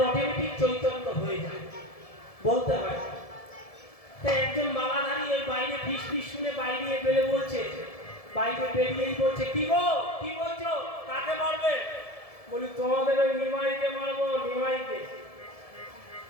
অটোমেটিক চৈতন্য হয়ে যায়, বলতে হয়। তাই একজন মালাধারী ওই বাইরে ফিস ফিস শুনে বাইরে বেড়ে বলছে, বাইরে বেরিয়েই বলছে কি গো কি বলছো, কাকে মারবে? বলি তোমাদের ওই নিমাইকে মারবো। নিমাইকে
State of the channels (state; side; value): late; right; 1.7 ms